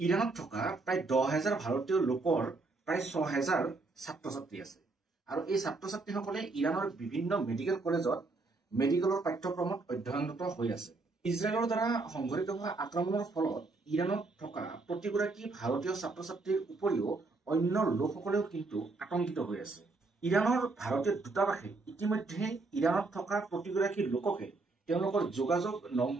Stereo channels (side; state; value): left; quieter; 3.6 dB